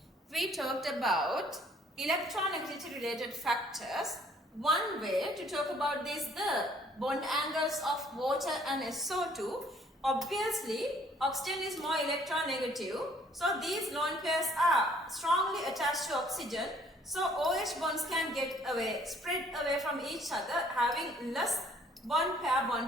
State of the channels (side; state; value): both; normal; correlation 0.61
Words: we talked about electronegativity related factors. One way to talk about this, the bond angles of water and SO2. Obviously, oxygen is more electronegative. So these lone pairs are strongly attached to oxygen. So OH bonds can get away, spread away from each other, having less bond pair